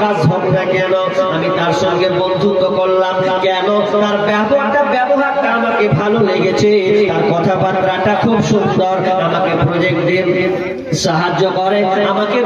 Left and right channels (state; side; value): identical; both; correlation 1.00